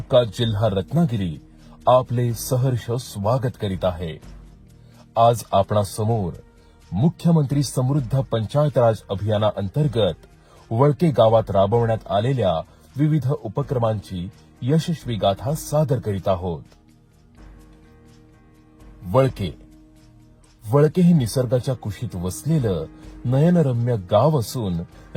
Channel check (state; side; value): identical; both; correlation 1.00